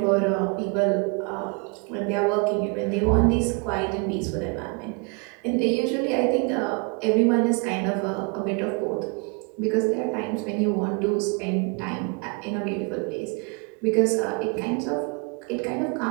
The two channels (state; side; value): quieter; left; 33.3 dB